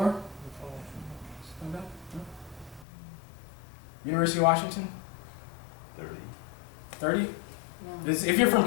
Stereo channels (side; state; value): right; drops out; at 2.9 s